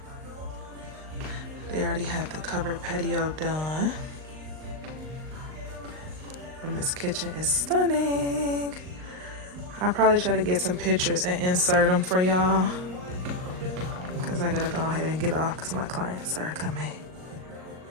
They already have the covered patio done. And this kitchen is stunning. I'll probably try to get some pictures and insert them for y'all, because I gotta go ahead and get off because my clients are coming.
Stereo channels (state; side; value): late; left; 39 ms